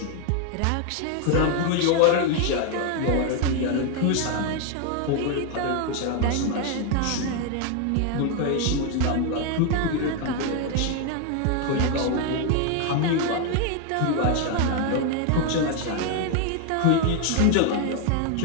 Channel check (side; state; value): both; different; correlation 0.01